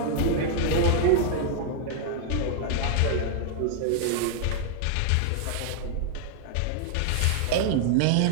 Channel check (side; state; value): both; different; correlation -0.01